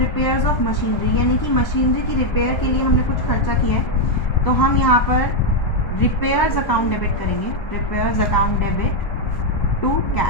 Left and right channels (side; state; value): right; late; 1.3 ms